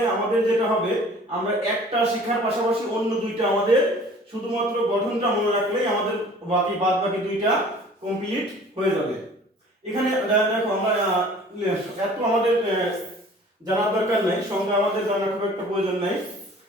আমাদের যেটা হবে, আমরা একটা শেখার পাশাপাশি অন্য দুইটা আমাদের শুধুমাত্র গঠনটা মনে রাখলেই আমাদের বাদ বাকি দুইটা কমপ্লিট হয়ে যাবে। এখানে দেখো আমরা এত আমাদের জানার দরকার নাই, সংজ্ঞা আমাদের জানার খুব একটা প্রয়োজন নাই।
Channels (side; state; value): both; normal; correlation 0.49